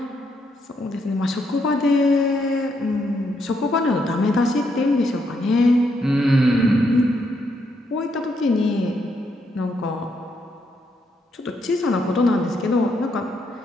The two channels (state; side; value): normal; both; correlation 0.76